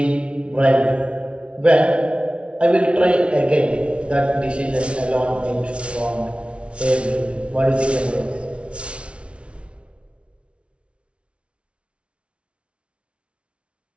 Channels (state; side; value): late; left; 0.060 ms